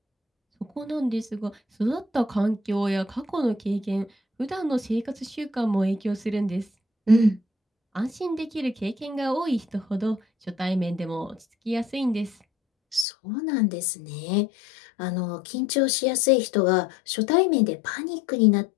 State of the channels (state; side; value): drops out; right; at 13.1 s